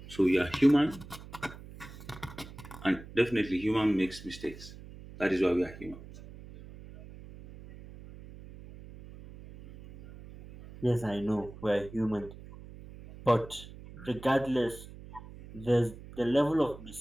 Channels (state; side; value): noise; right; hum, 16 dB below the sound